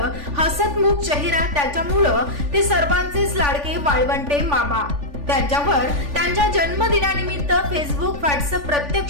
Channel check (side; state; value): left; late; 3.5 ms